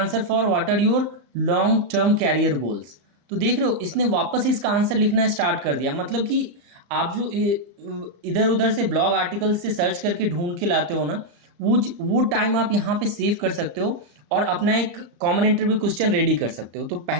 for what are your long term career goals. तो देख रहे हो इसने वापस इसका आंसर लिखना स्टार्ट कर दिया। मतलब कि आप जो इधर उधर से ब्लॉग आर्टिकल से सर्च करके ढूंढ के लाते हो ना, वो टाइम आप यहाँ पे सेव कर सकते हो और अपना एक कॉमन इंटरव्यू क्वेश्चन रेडी कर सकते हो। तो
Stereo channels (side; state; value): left; late; 35 ms